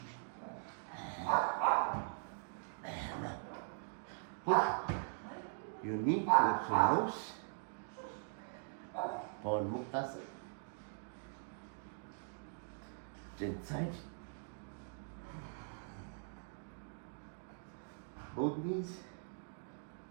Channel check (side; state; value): left; silent; digital silence